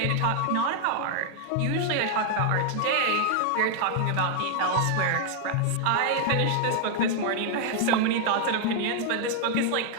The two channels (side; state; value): both; different; correlation 0.00